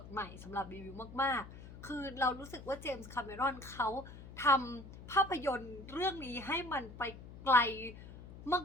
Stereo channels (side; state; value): left; noise; hum, 15 dB below the sound